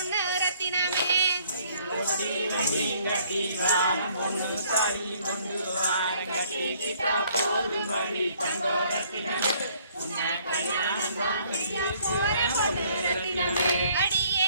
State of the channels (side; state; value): both; inverted; correlation -0.62